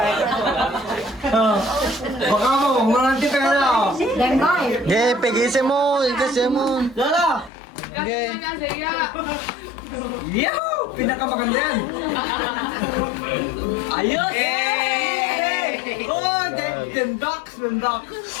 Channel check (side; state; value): right; drops out; at 7.5 s